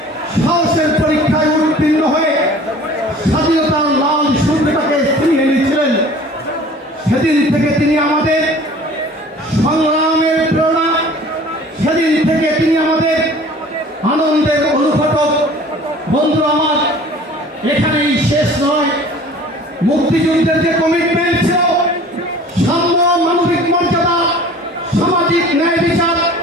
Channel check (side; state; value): both; normal; correlation 0.46